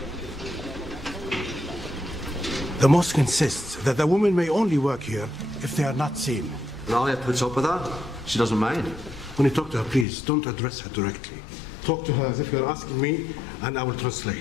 The mosque insists that the women may only work here if they are not seen. Alia puts up with that. She doesn't mind. When you talk to her, please, don't address her directly. Talk to her as if you're asking me, and I will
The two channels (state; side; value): drops out; right; at 10.1 s